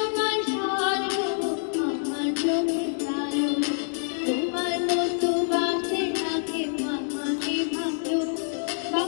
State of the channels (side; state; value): right; silent; digital silence